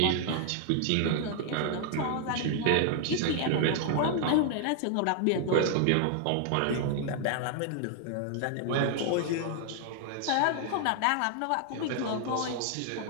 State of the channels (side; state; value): both; different; correlation 0.00